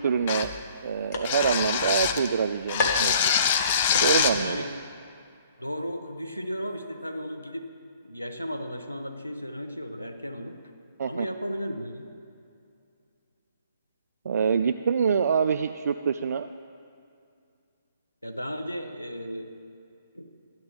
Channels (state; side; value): inverted; both; correlation -0.59